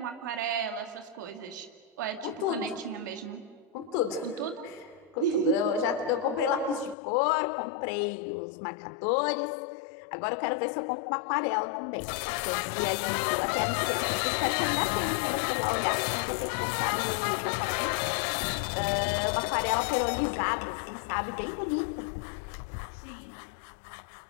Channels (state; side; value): drops out; right; at 7.0 s